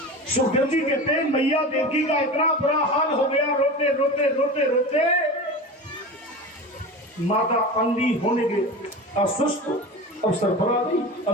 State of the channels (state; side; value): normal; both; correlation 0.30